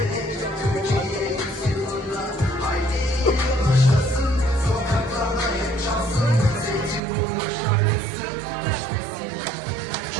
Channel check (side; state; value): left; drops out; at 7.0 s